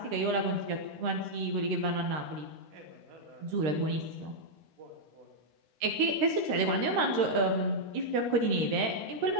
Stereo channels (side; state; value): left; late; 13 ms